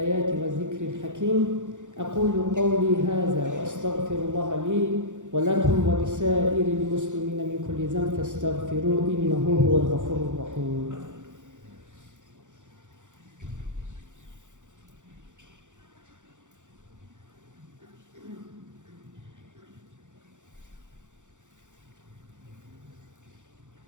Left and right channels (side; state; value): left; late; 0.86 ms